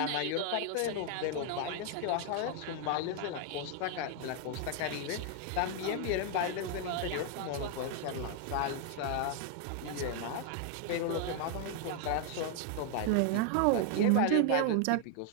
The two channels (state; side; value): different; both; correlation 0.00